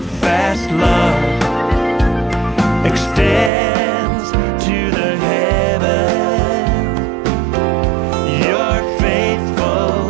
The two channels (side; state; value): left; drops out; at 3.5 s